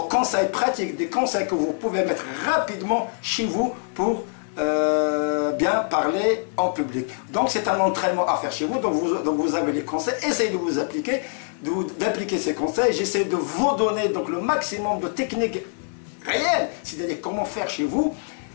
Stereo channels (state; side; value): silent; right; 62 dB below the other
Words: conseils pratiques, des conseils que vous pouvez mettre rapidement chez vous pour bien parler en public. Donc, c'est un entraînement à faire chez vous. Donc, vous avez les conseils. Essayez de vous appliquer, d'appliquer ces conseils. J'essaie de vous donner donc le maximum de techniques réelles, c'est-à-dire comment faire chez vous.